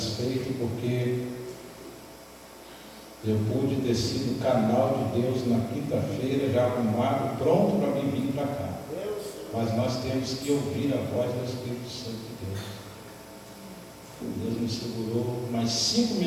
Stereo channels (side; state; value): both; identical; correlation 1.00